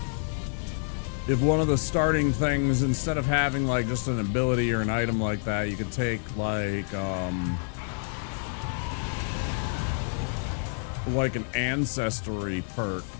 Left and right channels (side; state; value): right; silent; 59 dB below the other